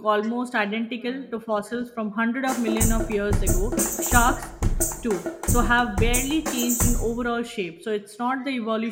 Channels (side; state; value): both; identical; correlation 1.00